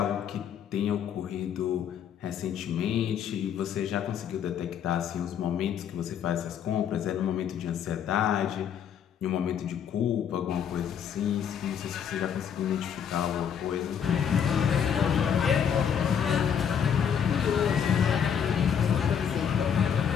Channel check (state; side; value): quieter; right; 8.1 dB